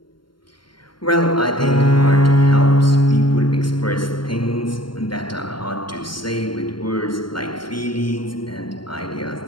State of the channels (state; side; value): late; right; 0.72 ms